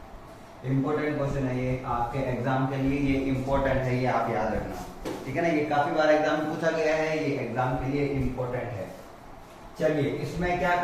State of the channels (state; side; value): identical; both; correlation 1.00